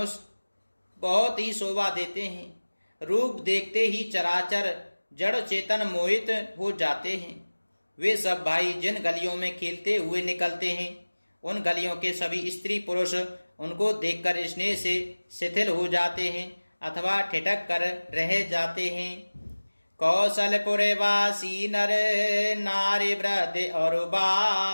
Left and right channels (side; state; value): both; inverted; correlation -1.00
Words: बहुत ही शोभा देते हैं। रूप देखते ही चराचर जड़ चेतन मोहित हो जाते हैं। वे सब भाई जिन गलियों में खेलते हुए निकलते हैं, उन गलियों के सभी स्त्री पुरुष उनको देखकर स्नेह से शिथिल हो जाते हैं अथवा ठिठक कर रह जाते हैं। कौशलपुर वासी नर नारी वृद्ध और